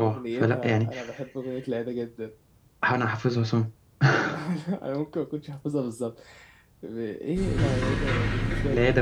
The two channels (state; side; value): identical; both; correlation 1.00